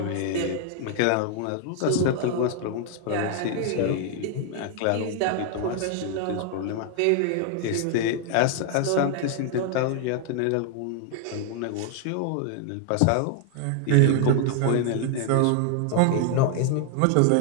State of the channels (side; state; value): both; different; correlation 0.00